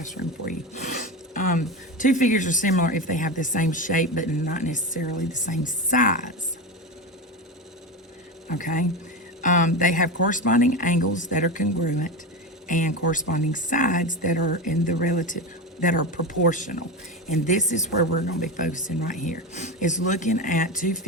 for you. Two figures are similar if they have the same shape, but not necessarily the same size. Okay? They have corresponding angles that are congruent and corresponding sides that are in the relative, that are proportional. And this is where we're going to be focusing right here, is looking at two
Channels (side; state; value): both; normal; correlation 0.20